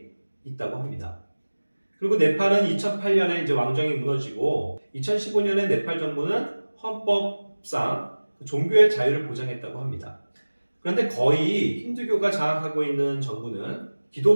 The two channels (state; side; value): inverted; both; correlation -1.00